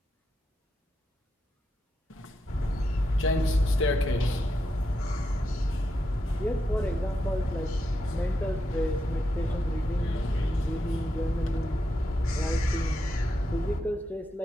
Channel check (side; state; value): both; normal; correlation 0.85